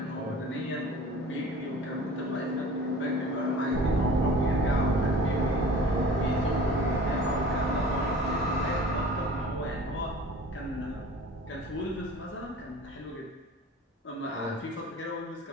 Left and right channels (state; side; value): normal; both; correlation 0.43